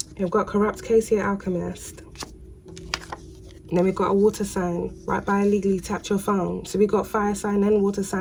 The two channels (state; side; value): identical; both; correlation 1.00